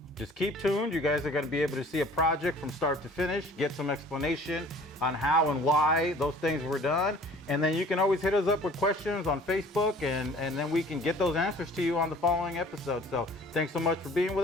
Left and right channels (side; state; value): both; normal; correlation 0.50